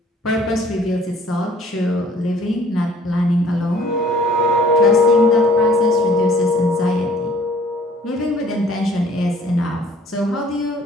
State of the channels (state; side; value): normal; both; correlation 0.56